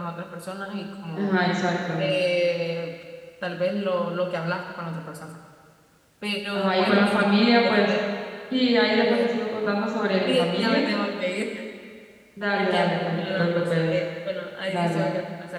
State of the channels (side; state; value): both; identical; correlation 1.00